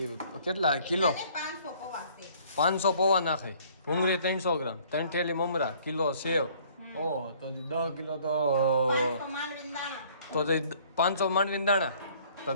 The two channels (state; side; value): inverted; both; correlation -0.57